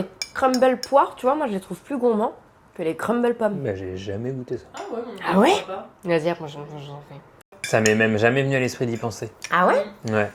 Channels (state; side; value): identical; both; correlation 1.00